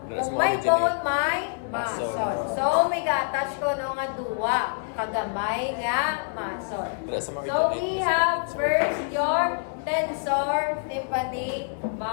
kung may bone, may muscle. So, may ga-attach ko nga duwa. Kagamay nga muscle. So, we have first your tensor tympanic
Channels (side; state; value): right; silent; digital silence